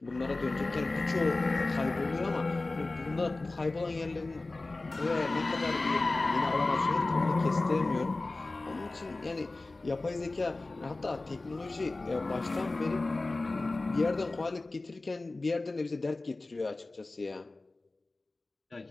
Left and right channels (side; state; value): right; quieter; 3.2 dB